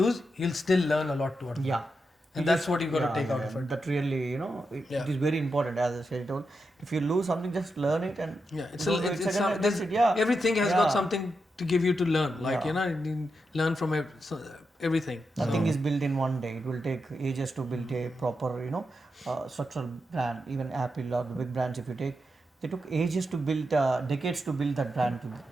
you'll still learn a lot out of it. And that's what you got to take out of it. That really, it is very important. As I said, if you lose something, just learn it and everything has got something to give you to learn. Like you learn from everything. Nothing is built in one day. It will take ages to build a proper, structural brand. Even Apple or the big brands, if you take, they took ages to build, decades to build that brand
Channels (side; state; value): both; normal; correlation 0.86